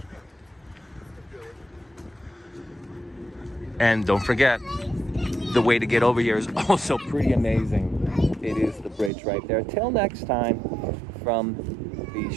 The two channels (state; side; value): drops out; left; at 9.1 s